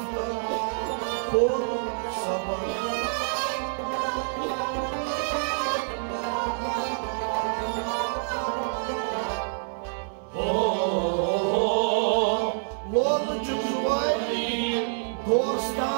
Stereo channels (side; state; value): left; silent; 60 dB below the other